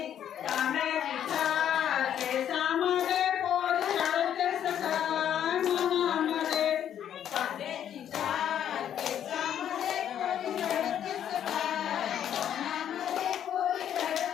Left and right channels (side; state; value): right; quieter; 9.9 dB